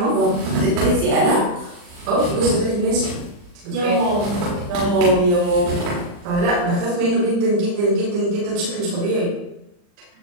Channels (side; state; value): left; late; 40 ms